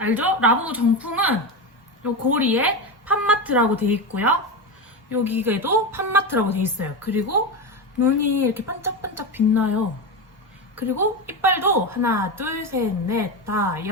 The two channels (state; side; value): normal; both; correlation 0.17